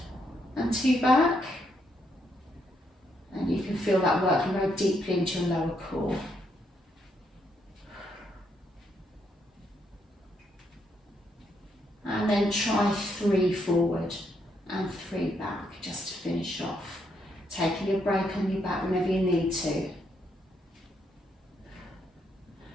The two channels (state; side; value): normal; both; correlation 0.76